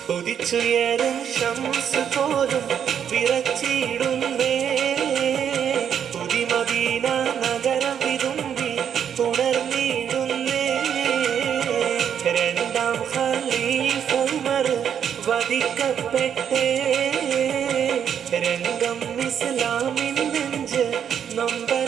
ഉദിച്ചുയരും ശംസ് പോലും വിറച്ചിടുന്നേ പുതിമദീന നഗരം വിതുമ്പി ഉണർന്നിടുന്നേ രണ്ടാം ഖലീഫ ഉമർ വധിക്കപ്പെട്ടേ രംഗം ഇസ്ലാമിൻ നെഞ്ച്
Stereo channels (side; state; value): left; quieter; 8.5 dB